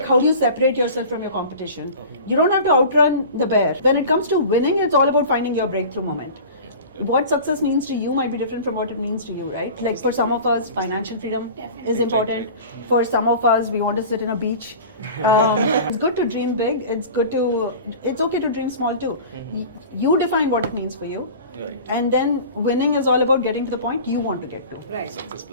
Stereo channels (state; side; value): inverted; both; correlation -0.38